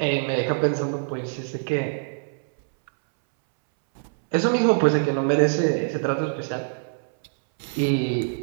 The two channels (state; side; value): silent; left; 62 dB below the other